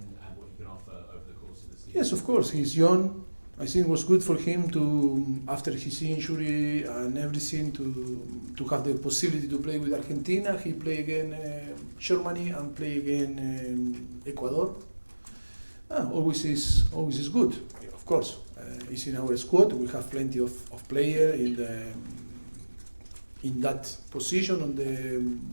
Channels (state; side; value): inverted; both; correlation -1.00